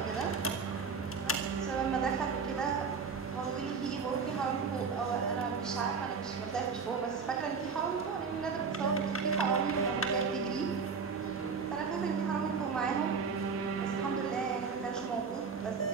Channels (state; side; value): quieter; left; 5.3 dB